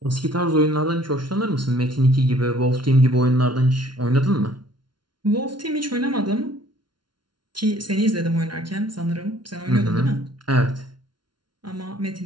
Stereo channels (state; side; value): late; left; 0.71 ms